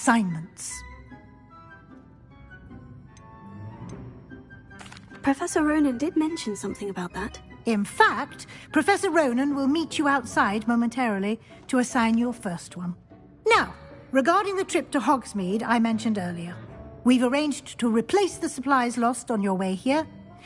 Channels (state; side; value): identical; both; correlation 1.00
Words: Professor Ronan did mention something about that. In fact, Professor Ronan will meet you outside momentarily to assign your first one. Now, regarding the trip to Hogsmeade I mentioned earlier, we've arranged to replace the supplies lost on your way here,